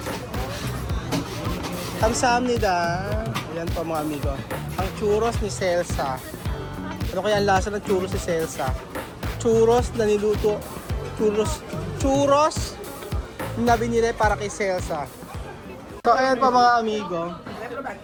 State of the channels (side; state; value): both; identical; correlation 1.00